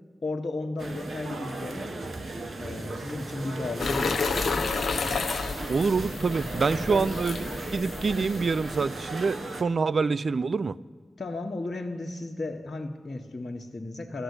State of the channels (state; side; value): normal; both; correlation 0.88